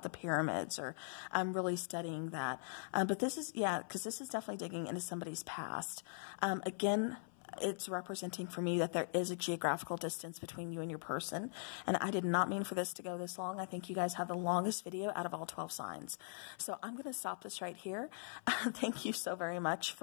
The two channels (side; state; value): right; silent; 50 dB below the other